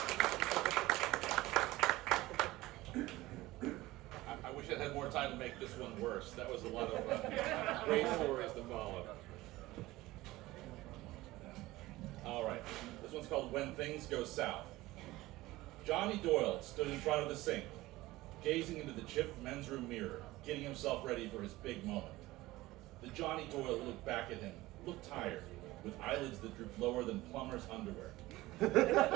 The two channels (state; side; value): quieter; left; 18.3 dB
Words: I wish I had more time to make this one worse. That was a lot of great stories to follow. All right, this one's called When Things Go South. Johnny Doyle stood in front of the sink, gazing into the chipped men's room mirror, getting himself ready for his big moment. The Johnny Doyle who looked back at him looked tired, with eyelids that drooped lower than plumber's underwear. The